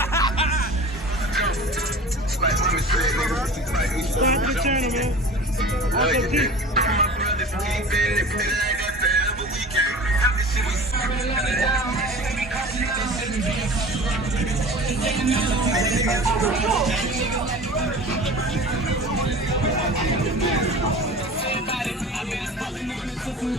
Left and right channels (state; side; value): normal; both; correlation 0.39